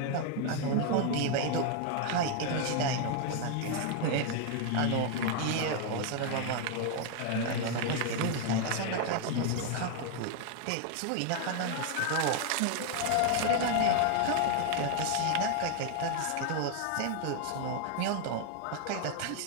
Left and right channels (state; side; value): different; both; correlation 0.00